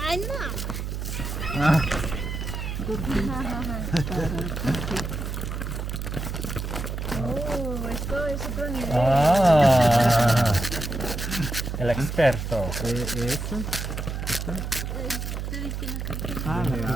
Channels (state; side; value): noise; right; hum, 4 dB below the sound